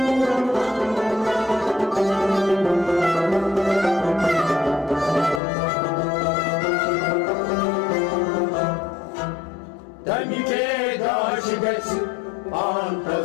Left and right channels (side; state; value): right; drops out; at 5.4 s